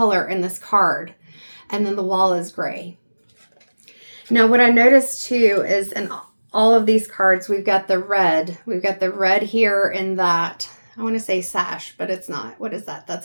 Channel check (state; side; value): inverted; both; correlation -1.00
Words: in this card. And then the wall is gray. Now what I noticed too is in all of these cards, we've got the red. We've got the red here in that, I want to say sash, but it's not. What is that? That's